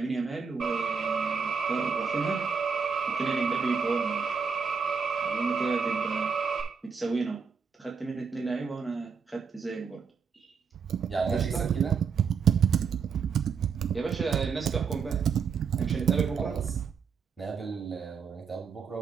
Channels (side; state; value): left; quieter; 6.0 dB